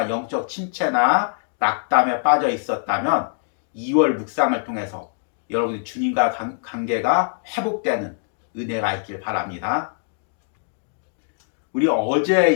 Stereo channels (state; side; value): silent; right; digital silence